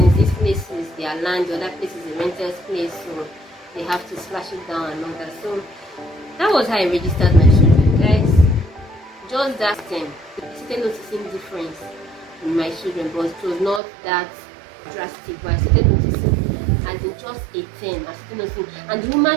this place is their land, the other place is a rental place, so they have to slash it down and all that. So that was how I registered my children, guys. Just that time, I started noticing difference in my children, but it was not that drastic. But I started noticing, as in just a term, I started noticing. And the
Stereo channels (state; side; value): drops out; left; at 13.8 s